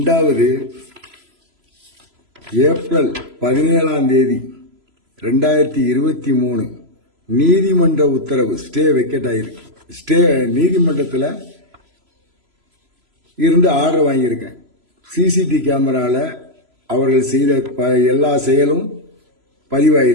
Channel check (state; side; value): late; left; 3.0 ms